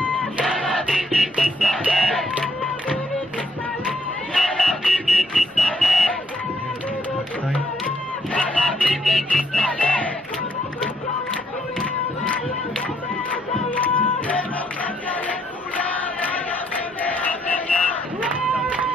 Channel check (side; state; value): both; normal; correlation 0.70